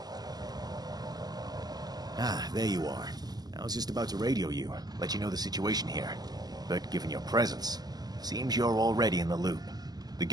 Ah, there you are. I was just about to radio you, let you know the situation here. But given your presence, seems you're already in the loop. The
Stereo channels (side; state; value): left; late; 0.19 ms